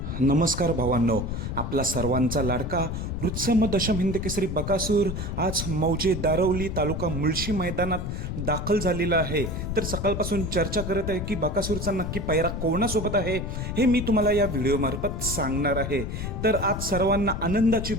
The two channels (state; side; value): noise; left; rumble, 4 dB below the sound